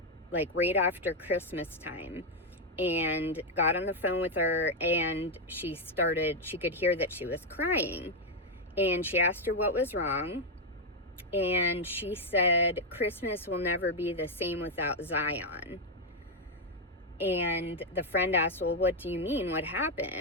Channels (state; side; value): normal; both; correlation 0.02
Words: right after Christmas time, and got on the phone with her, and she could hear that she was crying, and she asked her what was wrong, and she said, Christmas will never be the same without Zion. And the friend asked, well, what do you mean? What